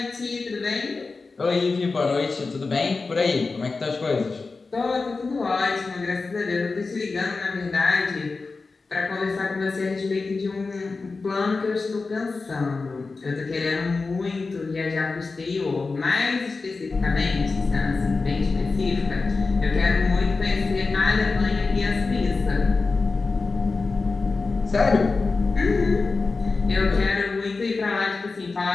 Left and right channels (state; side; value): quieter; right; 4.0 dB